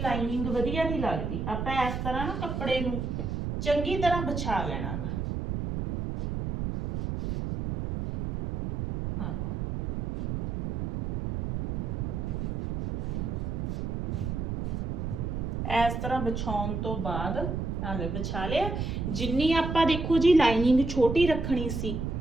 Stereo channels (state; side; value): noise; right; rumble, 2 dB below the sound